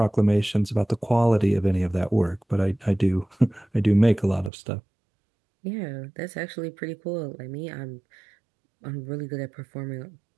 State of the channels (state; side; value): drops out; left; at 4.5 s